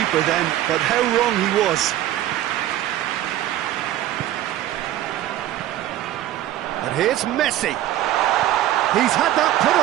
then, but how wrong he was. And here's Messi. He's had that put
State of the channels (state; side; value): quieter; left; 13.3 dB